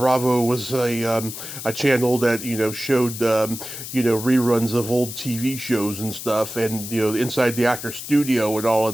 was a channel that showed reruns of old TV shows and stuff, and inside the actor studio and all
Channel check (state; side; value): noise; left; hiss, 9 dB below the sound